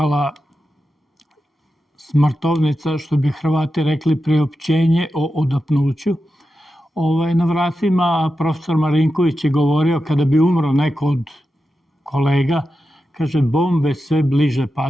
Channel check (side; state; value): both; normal; correlation 0.90